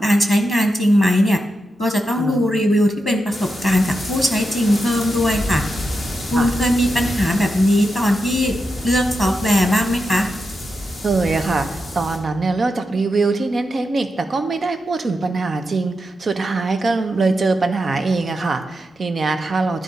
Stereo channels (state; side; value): normal; both; correlation 0.87